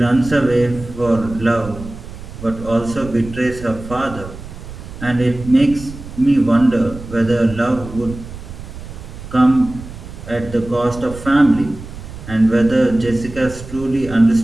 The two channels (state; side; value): noise; right; rumble, 13 dB below the sound